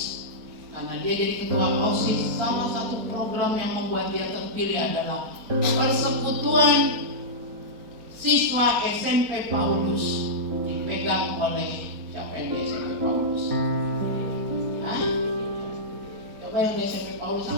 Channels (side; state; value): left; late; 4.2 ms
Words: Karena dia jadi ketua OSIS, salah satu program yang membuat dia terpilih adalah persekutuan siswa SMP Paulus, dipegang oleh siapa yang di SMP Paulus? Hah? Coba yang di SMP Paulus